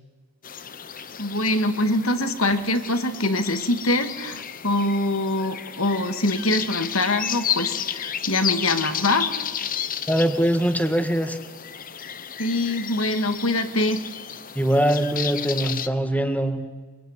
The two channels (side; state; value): both; normal; correlation 0.40